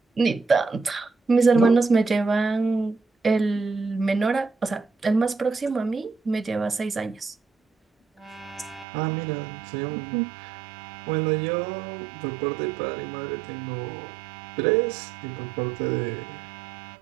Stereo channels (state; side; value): drops out; left; at 8.8 s